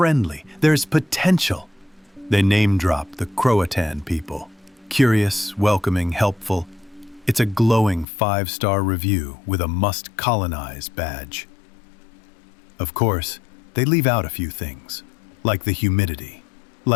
There's potential. They name-drop the Croatan people. Curious, welcoming, helpful. It's a glowing 5-star review with a must-colonize badge. Of course, they leave out a few things, like the humidity,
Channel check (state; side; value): drops out; right; at 8.1 s